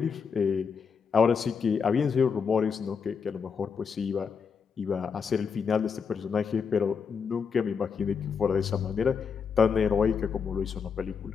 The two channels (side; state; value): right; quieter; 6.1 dB